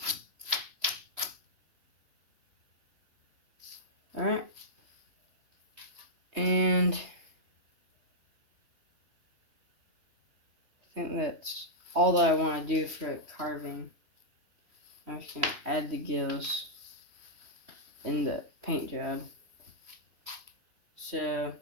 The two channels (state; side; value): late; left; 3.0 ms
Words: alright. And I think that's all that I want to do for carving. I'm just going to add the gills in the paint job. So,